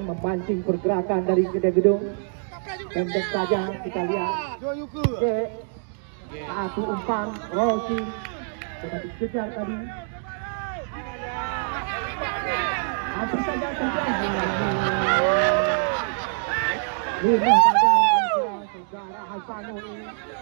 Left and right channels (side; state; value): left; silent; 58 dB below the other